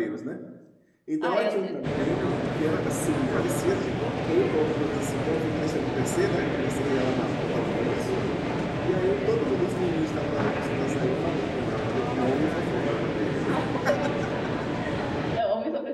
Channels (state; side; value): identical; both; correlation 1.00